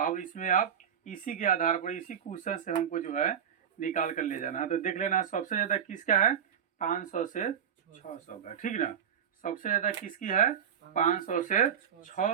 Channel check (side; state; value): left; quieter; 8.3 dB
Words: इसमें आप इसी के आधार पर, इसी क्वेश्चन से हमको जो है निकाल कर ले जाना है। तो देख लेना सबसे ज़्यादा किसका है, 500 से 600 का, ठीक ना। सबसे ज़्यादा किसकी है, 500 से